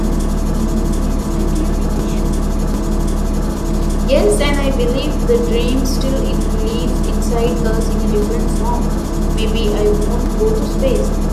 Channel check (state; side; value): identical; both; correlation 1.00